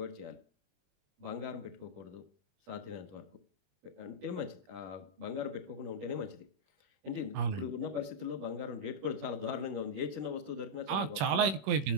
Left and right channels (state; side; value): late; left; 21 ms